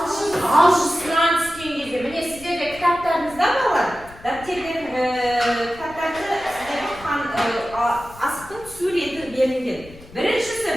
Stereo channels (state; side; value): noise; left; rumble, 20 dB below the sound